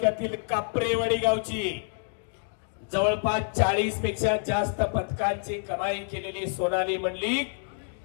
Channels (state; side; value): silent; right; digital silence